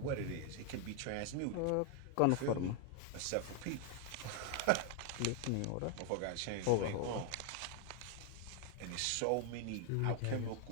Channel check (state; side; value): different; both; correlation 0.01